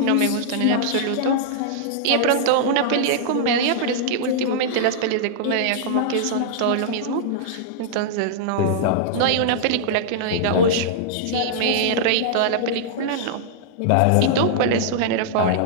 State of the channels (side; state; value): both; different; correlation -0.02